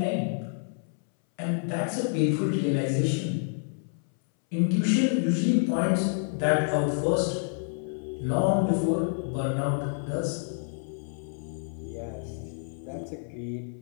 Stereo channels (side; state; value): right; silent; 59 dB below the other